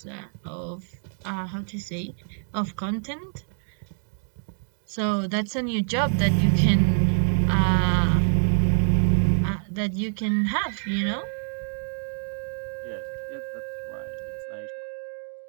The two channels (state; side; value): silent; left; digital silence